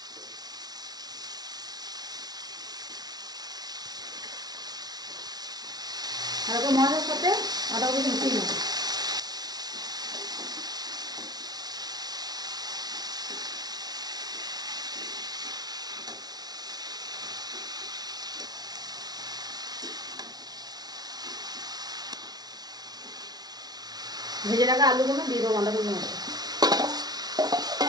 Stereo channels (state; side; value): late; left; 0.19 ms